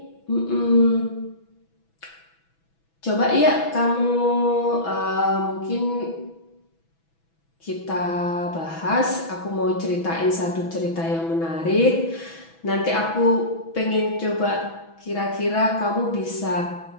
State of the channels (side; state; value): right; late; 6.1 ms